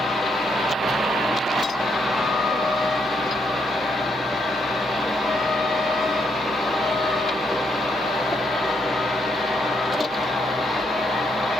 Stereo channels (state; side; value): normal; both; correlation 0.76